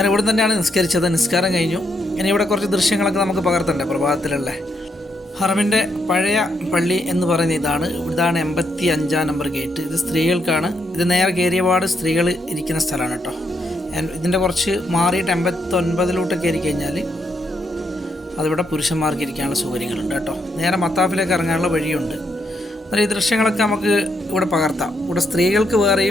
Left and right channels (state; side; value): normal; both; correlation 0.78